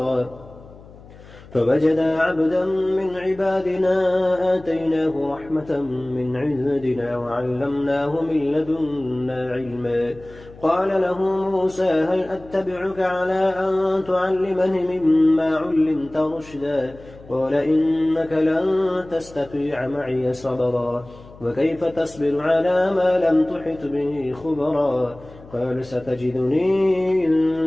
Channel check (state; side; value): noise; left; hum, 21 dB below the sound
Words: فوجدا عبدا من عبادنا آتيناه رحمة من عندنا وعلمناه من لدنا علما قال له موسى هل أتبعك على أن تعلمني مما علمت رشدا قال إنك لن تستطيع معي صبرا وكيف تصبر على ما لم تحط به خبرا قال ستجدني